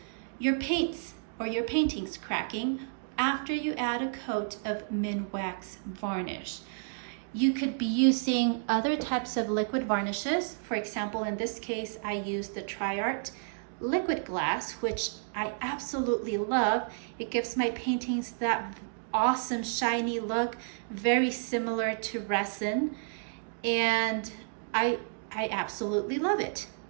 your paints or your paintings cracking after you add a coat of Minwax varnish. You could be using other types of liquid varnishes. For example, in this case, I used the Tshirts liquid glass, which I absolutely love. It gives my paintings that awesome shiny look, very similar to resin, and I absolutely love it.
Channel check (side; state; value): left; silent; digital silence